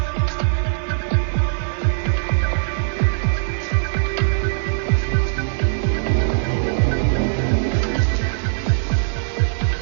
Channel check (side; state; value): left; silent; digital silence